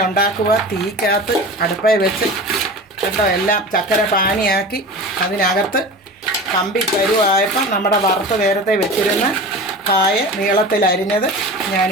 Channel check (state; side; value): normal; both; correlation 0.33